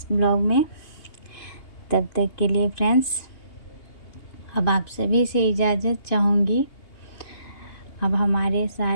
ब्लॉग में। तब तक के लिए फ्रेंड्स, अब आप सभी से इजाज़त चाहूँगी। अब हमारे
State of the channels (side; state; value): right; late; 2.8 ms